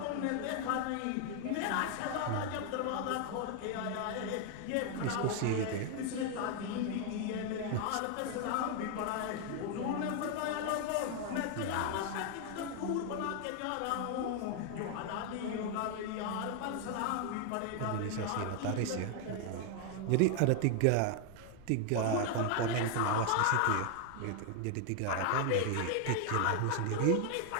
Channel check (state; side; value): different; both; correlation 0.00